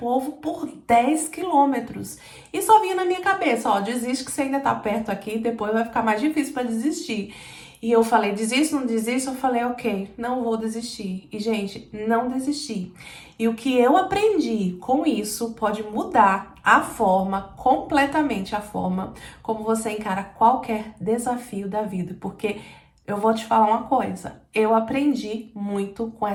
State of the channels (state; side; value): identical; both; correlation 1.00